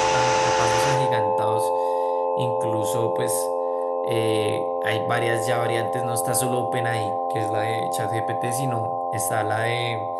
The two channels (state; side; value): identical; both; correlation 1.00